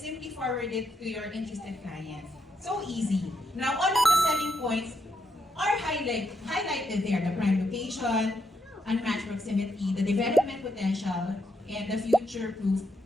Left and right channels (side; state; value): both; normal; correlation 0.80